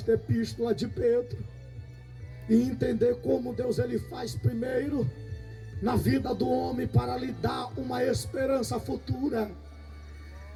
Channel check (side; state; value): both; identical; correlation 1.00